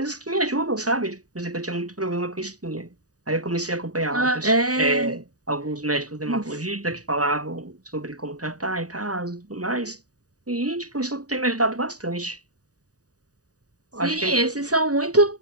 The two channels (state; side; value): late; left; 0.67 ms